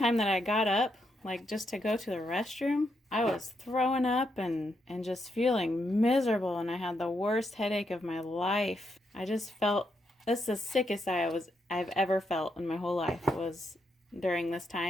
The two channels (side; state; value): both; normal; correlation 0.80